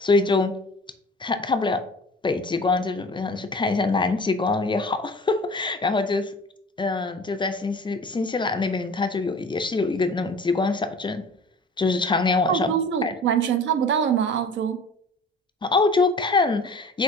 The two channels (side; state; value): both; normal; correlation 0.43